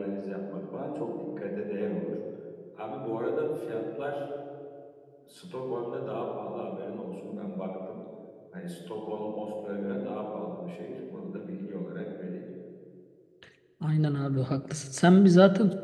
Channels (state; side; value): identical; both; correlation 1.00